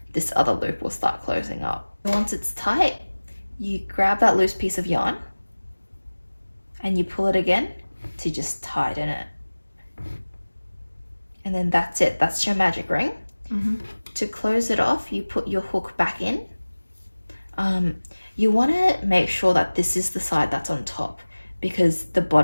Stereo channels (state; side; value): inverted; both; correlation -1.00